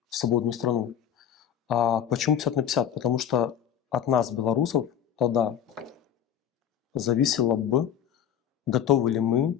в свободную страну. Почему 50 на 50? Потому что от нас, белорусов, тогда зависело бы, готовы ли мы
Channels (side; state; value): right; quieter; 9.5 dB